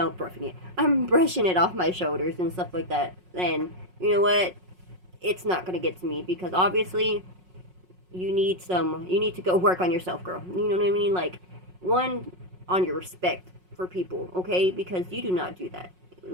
I'm brushing it off my shoulders and stuff like that. And you know what? It's not gonna get to me because obviously you need to go work on yourself, girl. You know what I mean? Like, one, on your respect for people, okay? Because you do not do that.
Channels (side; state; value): left; late; 5.5 ms